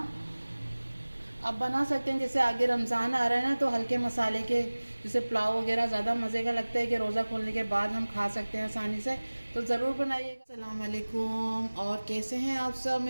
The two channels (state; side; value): inverted; both; correlation -1.00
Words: आप बना सकते हैं, जैसे आगे रमज़ान आ रहा है ना, तो हल्के मसाले के जैसे पुलाव वगैरह ज़्यादा मज़े का लगता है कि रोज़ा खोलने के बाद हम खा सकते हैं आसानी से, तो ज़रूर बनाइएगा। अस्सलाम वालेकुम, और कैसे हैं आप सब?